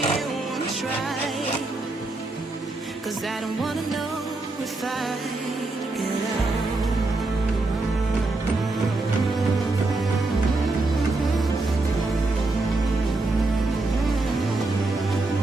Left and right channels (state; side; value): quieter; left; 3.2 dB